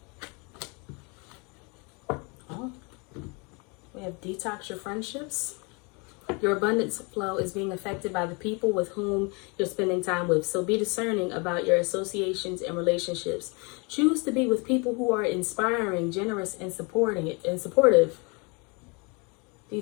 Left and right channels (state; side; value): quieter; right; 31.0 dB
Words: Detox your friendships. Your abundance flow is being affected by the people with whom you're spending time with. So be discerning about your associations and relationships. Choose to be with people who are inspiring, generous, and supportive.